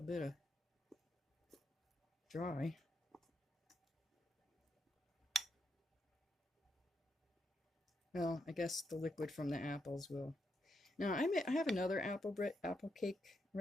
of dry. Well, I guess the liquid from the apples will. Now, I have another apple cake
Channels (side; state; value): both; normal; correlation 0.81